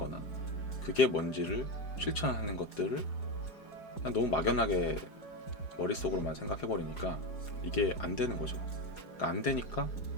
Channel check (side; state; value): right; late; 4.9 ms